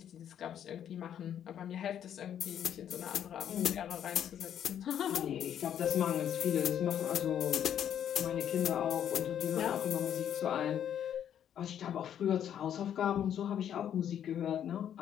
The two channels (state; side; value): quieter; right; 9.7 dB